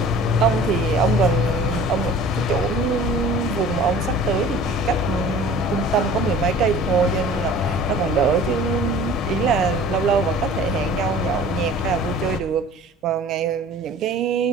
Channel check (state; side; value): normal; both; correlation 0.45